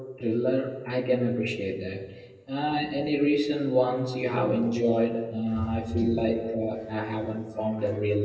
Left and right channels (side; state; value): both; identical; correlation 1.00